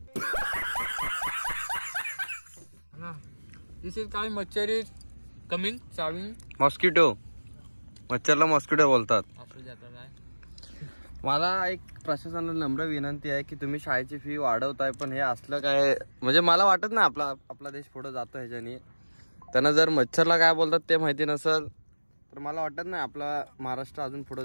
This is काय मच्छर is Coming. चावी. Mosquito. मच्छरला mosquito बोलतात. असू जातं काय. मला एक प्रशासनाला नम्र विनंती आहे की तुम्ही शाळेची फी वाढवताय, पण हे असलं काय म्हणजे मला वाटत नाही आपला देश पुढे जातो ह्याच्यानी. त्यांना जर मच्छरला काय बोलतात ते माहिती नसेल तर मला वाटत नाही आपला महाराष्ट्र अजून पुढे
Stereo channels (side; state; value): both; inverted; correlation -1.00